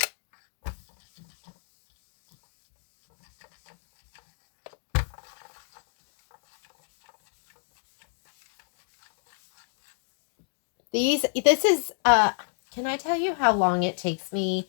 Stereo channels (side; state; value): right; silent; 58 dB below the other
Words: This is, can I tell you how long it takes me